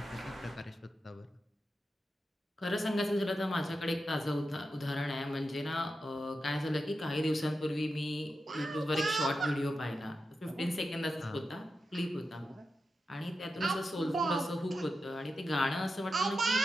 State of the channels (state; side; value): normal; both; correlation 0.89